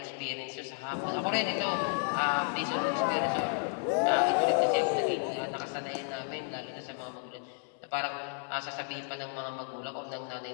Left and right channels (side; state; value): right; silent; 56 dB below the other